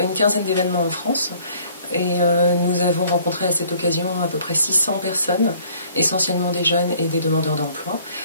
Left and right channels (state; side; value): inverted; both; correlation -0.57